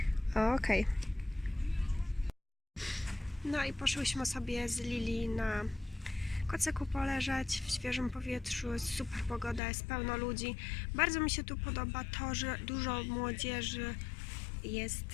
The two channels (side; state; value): right; drops out; at 9.6 s